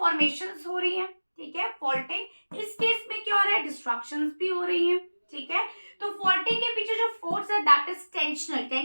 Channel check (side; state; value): both; inverted; correlation -1.00